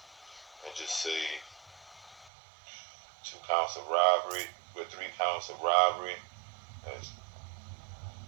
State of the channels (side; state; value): left; drops out; at 2.3 s